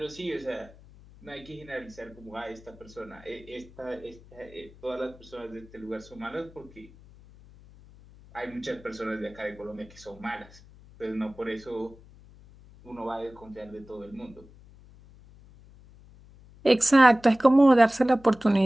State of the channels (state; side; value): noise; left; hum, 23 dB below the sound